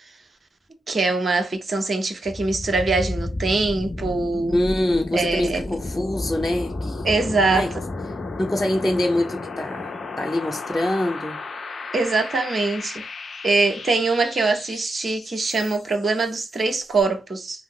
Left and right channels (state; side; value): normal; both; correlation 0.85